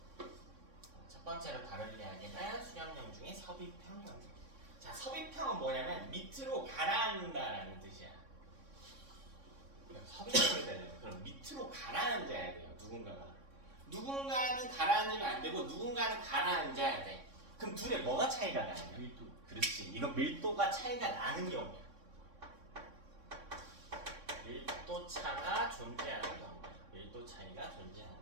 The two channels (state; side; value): late; left; 3.6 ms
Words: 첫 번째로 다룰 이야기는 수렴형 중에 섭입형 경계. 자, 섭입형은 뭐냐면 밑으로 가라앉는다라는 뜻이야. 섭입형이 되려면 그럼 밑으로 가라앉아야 돼요. 누군가는 가라앉으면 안 되고 누군가는 가라앉아야 돼. 그럼 둘의 뭐가 차이가 나냐? 밀도. 그렇지. 이거 밀도가 차이가 나는 경우야. 밀도 차가 존재하는 경우. 밀도 차이가 존재하는